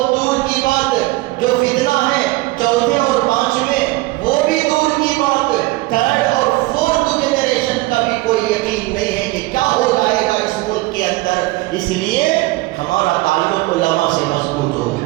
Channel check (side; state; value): left; quieter; 19.9 dB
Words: دور کی بات، جو فتنہ ہے 4تھے اور 5ویں وہ بھی دور کی بات، 3rd اور 4th جنریشن کا بھی کوئی یقین نہیں ہے کہ کیا ہو جائے گا اس ملک کے اندر۔ اس لیے ہمارا تعلق علماء سے مضبوط ہو،